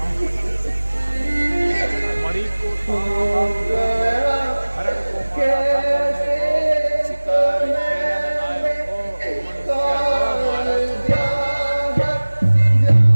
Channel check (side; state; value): both; inverted; correlation -1.00